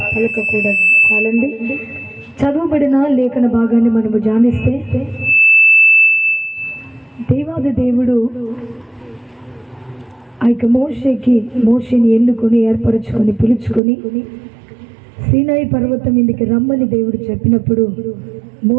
పలకకూడదు. చాలండి. చదువుబడిన లేఖన భాగాన్ని మనము ధ్యానిస్తే, దేవాది దేవుడు ఆ యొక్క మోషేని ఎన్నుకొని ఏర్పరచుకొని పిలుచుకొని సీనాయి పర్వతం మీదకి రమ్మని దేవుడు చెప్పినప్పుడు,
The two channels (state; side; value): drops out; left; at 13.8 s